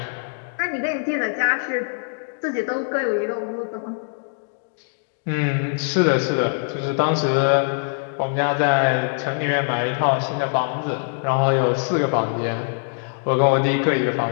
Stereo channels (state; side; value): silent; right; digital silence